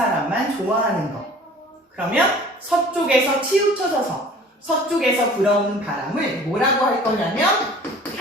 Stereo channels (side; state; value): both; normal; correlation 0.47